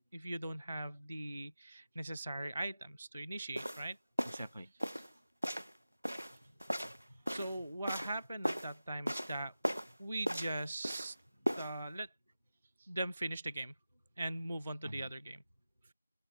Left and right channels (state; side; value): inverted; both; correlation -0.94